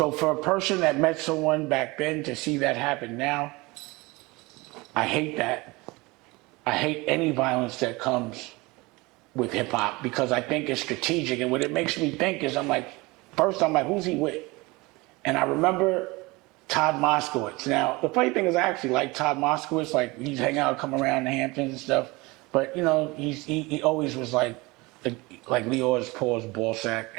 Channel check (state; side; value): quieter; left; 23.6 dB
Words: So for a person that met someone back then to see that happen now, I hate that. I hate any violence that comes with hip hop because I think it's strategic. And what it makes me think is first I'm like, who's he with? And I remember Todd Moskowitz. Now, the funny thing is I actually like Todd Moskowitz. Like, he's hang out, come around the Hamptons and stuff. But, you know, he always was like Leor's Paul's ball sack.